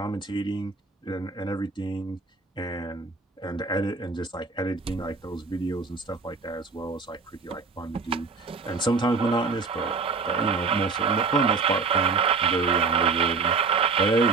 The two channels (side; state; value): left; quieter; 4.5 dB